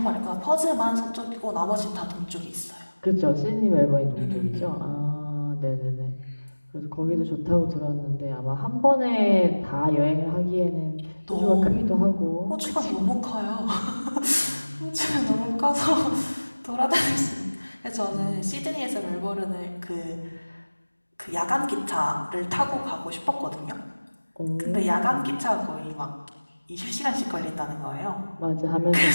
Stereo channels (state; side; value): inverted; both; correlation -1.00